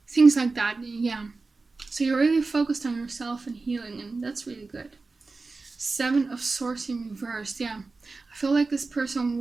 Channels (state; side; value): quieter; left; 3.8 dB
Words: things like that. Yeah, so you're really focused on yourself and healing, and that's really good. 7 of Swords in reverse. Yeah, I feel like this person